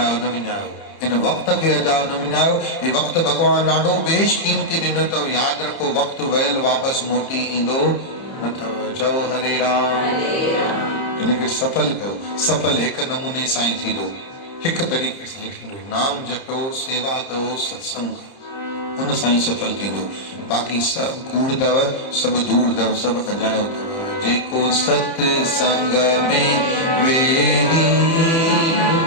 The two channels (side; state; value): right; late; 30 ms